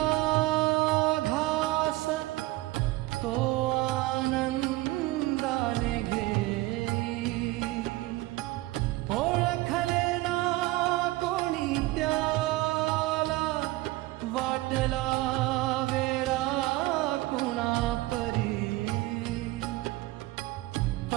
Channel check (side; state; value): left; quieter; 19.1 dB